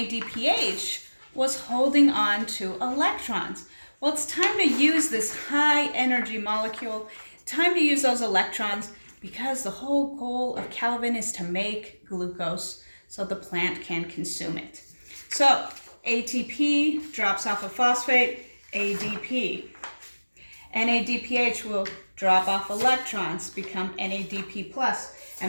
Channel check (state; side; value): inverted; both; correlation -1.00